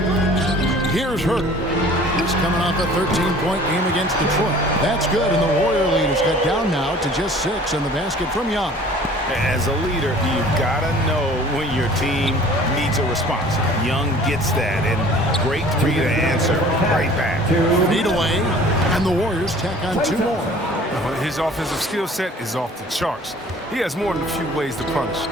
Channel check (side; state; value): both; normal; correlation 0.49